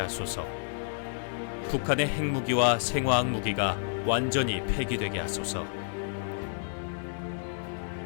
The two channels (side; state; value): right; silent; 58 dB below the other